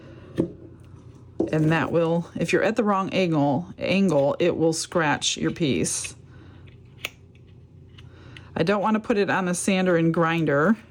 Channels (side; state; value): both; identical; correlation 1.00